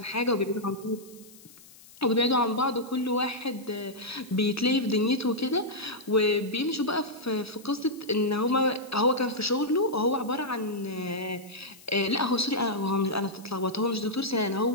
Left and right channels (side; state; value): left; noise; hiss, 22 dB below the sound